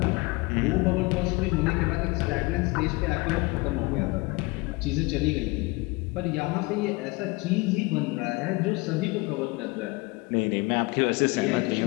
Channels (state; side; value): quieter; right; 24.9 dB